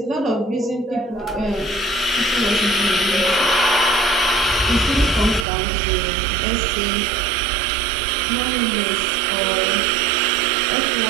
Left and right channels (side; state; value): left; drops out; at 5.5 s